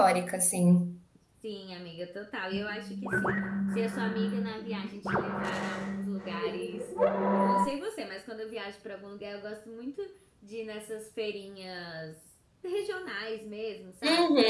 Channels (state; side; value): identical; both; correlation 1.00